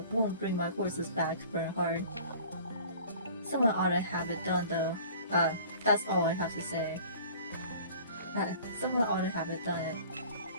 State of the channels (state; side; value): inverted; both; correlation -0.47